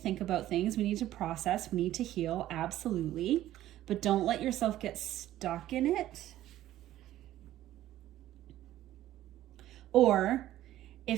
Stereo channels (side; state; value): left; quieter; 13.8 dB